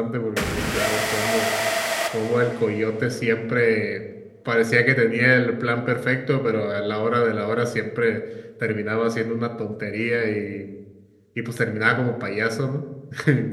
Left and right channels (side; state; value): both; identical; correlation 1.00